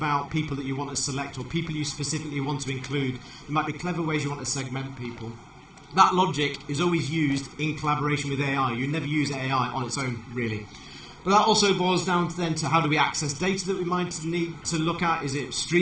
people that you want to select or people you specifically want to include. There might be clever ways you want to segment people. That logic is always used in collaboration with AI. You never use AI on its own, really. But that also boils down then to how do we access data that we might need to look at. Is it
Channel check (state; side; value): identical; both; correlation 1.00